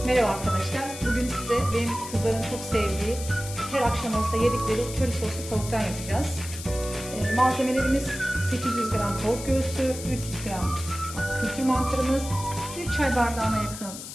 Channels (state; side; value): noise; left; hiss, 11 dB below the sound